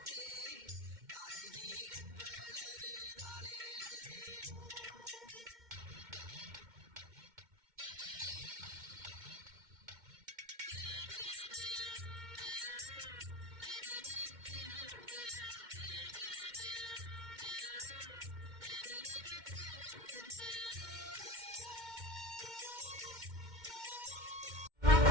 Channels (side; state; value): left; late; 2.1 ms